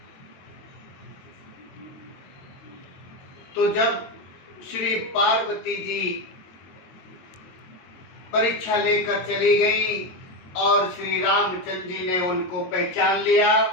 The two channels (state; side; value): late; right; 22 ms